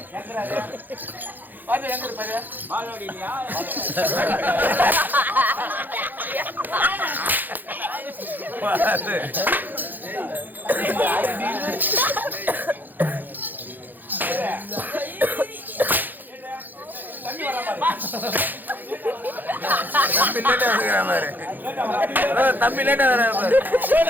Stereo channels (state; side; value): late; left; 0.087 ms